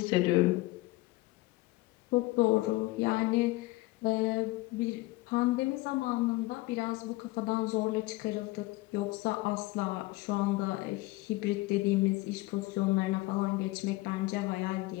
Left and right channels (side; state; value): right; quieter; 20.4 dB